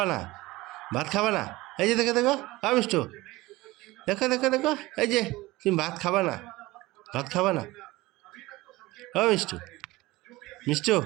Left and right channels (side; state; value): left; quieter; 19.8 dB